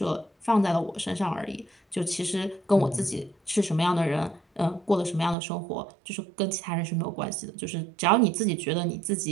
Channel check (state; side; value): drops out; left; at 5.4 s